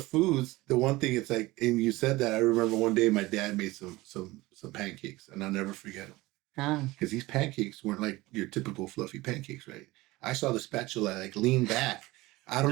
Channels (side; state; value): left; quieter; 20.1 dB